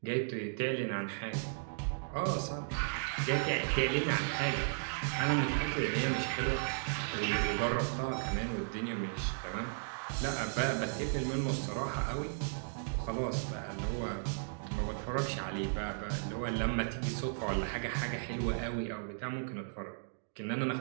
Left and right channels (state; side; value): silent; left; digital silence